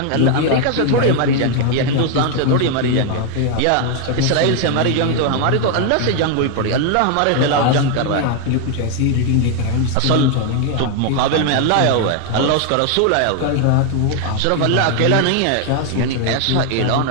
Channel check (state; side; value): different; both; correlation 0.00